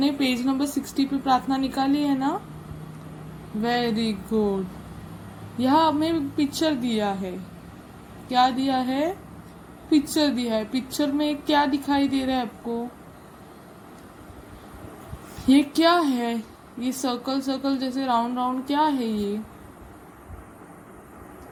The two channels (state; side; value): identical; both; correlation 1.00